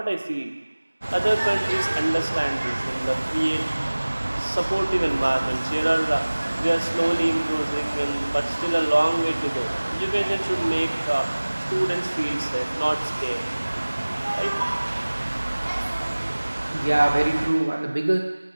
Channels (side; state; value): both; inverted; correlation -1.00